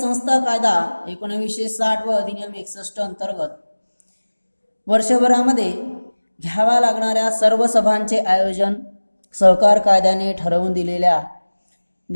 कायदा 1960 व अधिनियम 61 अंतर्गत वर्षभरामध्ये घ्याव्या लागणाऱ्या सर्व सभांचे आयोजन सहकार कायद्याने ठरवून दिलेल्या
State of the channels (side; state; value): both; inverted; correlation -1.00